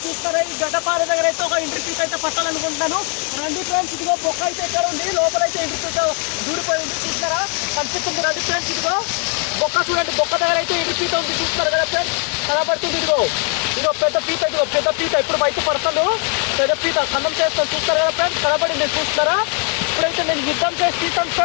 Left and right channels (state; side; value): quieter; right; 39.5 dB